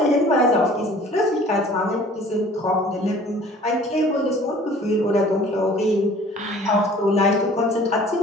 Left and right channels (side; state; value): both; normal; correlation 0.50